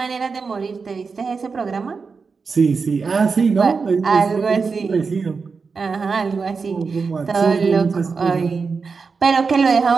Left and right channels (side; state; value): left; quieter; 4.9 dB